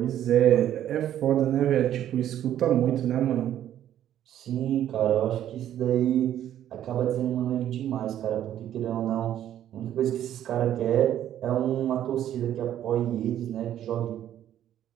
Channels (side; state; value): left; quieter; 11.3 dB